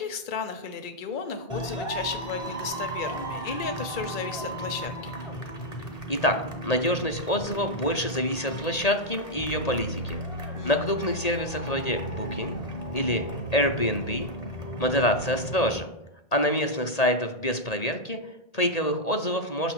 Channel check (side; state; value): right; late; 1.8 ms